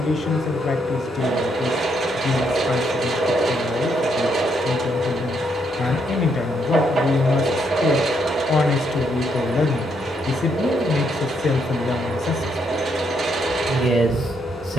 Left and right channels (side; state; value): both; normal; correlation 0.75